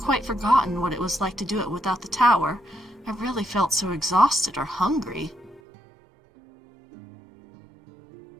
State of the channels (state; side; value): drops out; left; at 5.6 s